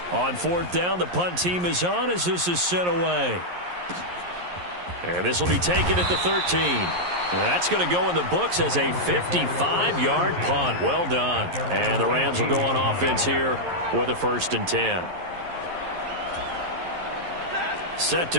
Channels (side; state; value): left; late; 11 ms